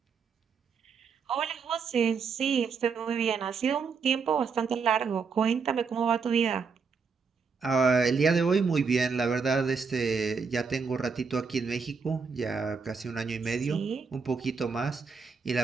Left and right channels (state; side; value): quieter; left; 5.4 dB